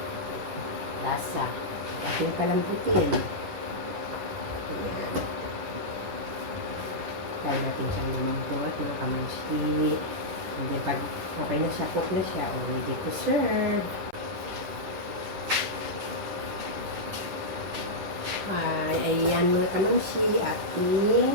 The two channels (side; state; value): left; late; 11 ms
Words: lasa. Ating palambutin. Ayan. Try natin siyang lumambot, mga kamansi. And then, pag okay na siya, cook na siya, ready to serve. Ayan mga kamansi,